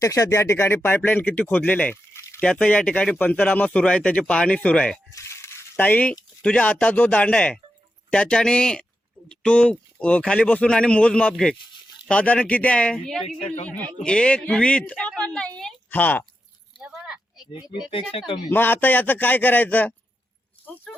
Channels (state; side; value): normal; both; correlation 0.87